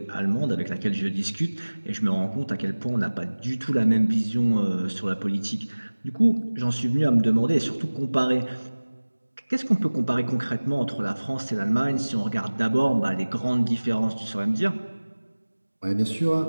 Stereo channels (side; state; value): both; inverted; correlation -1.00